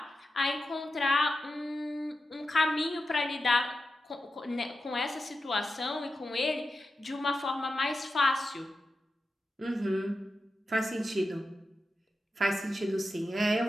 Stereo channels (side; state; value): both; normal; correlation 0.90